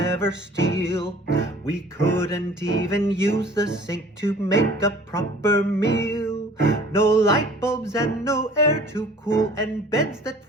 steal. We couldn't even use the sink to make a proper meal. No light bulbs and no air to cool, and beds that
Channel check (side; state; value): both; normal; correlation 0.49